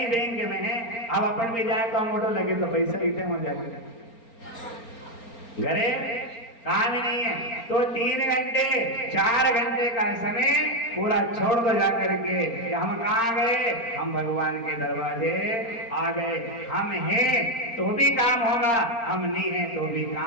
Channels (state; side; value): late; right; 4.4 ms